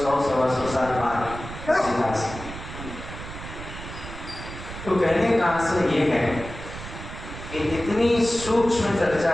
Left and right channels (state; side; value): noise; right; rumble, 11 dB below the sound